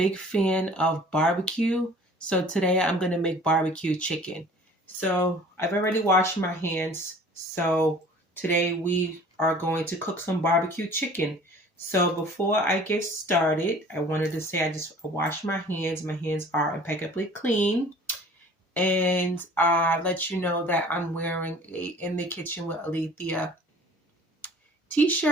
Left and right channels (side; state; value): both; normal; correlation 0.48